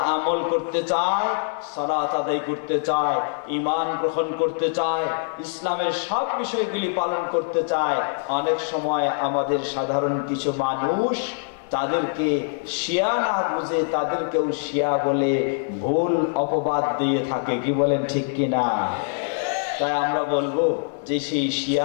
আমল করতে চায়, সালাত আদায় করতে চায়, ঈমান গ্রহণ করতে চায়, ইসলামের সব বিষয়গুলি পালন করতে চায়, অনেক সময় আমাদের সাধারণ কিছু মানুষ তাদেরকে শিয়া না বুঝে তাদেরকেও শিয়া বলে ভুল অপবাদ দিয়ে থাকে। কি বলেন, ঠিক কিনা? তাই আমরা বলবো যে সেই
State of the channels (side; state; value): right; silent; 63 dB below the other